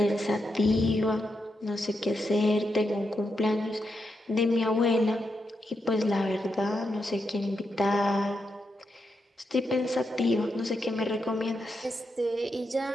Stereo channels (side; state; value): both; normal; correlation 0.84